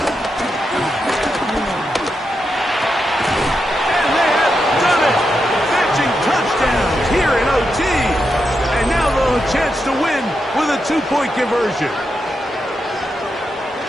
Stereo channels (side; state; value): both; normal; correlation 0.85